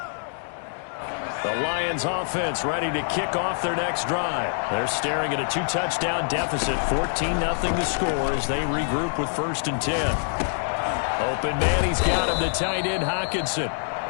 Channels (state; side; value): silent; right; digital silence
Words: The Lions offense ready to kick off their next drive. They're staring at a 2-touchdown deficit, 14-0 to score as they regroup with 1st and 10. Open man, he's got him, the tight end Hockenson.